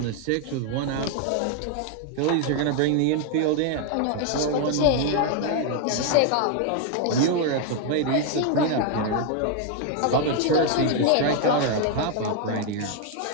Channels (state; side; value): different; both; correlation 0.00